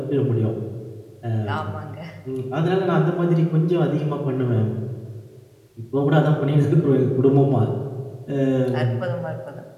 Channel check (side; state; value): both; identical; correlation 1.00